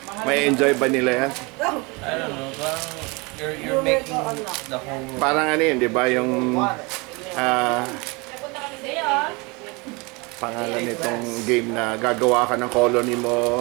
may enjoy ba nila yan? I don't know, parang you're making the whole world. Parang ano yun, di ba? Yung Napunta kami sa iyo. pangalan nitong game na gagawa ka ng colony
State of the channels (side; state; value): left; quieter; 27.4 dB